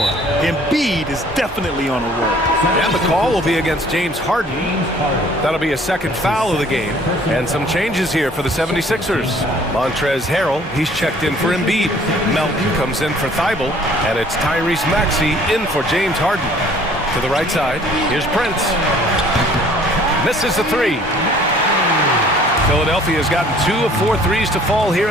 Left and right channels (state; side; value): normal; both; correlation 0.55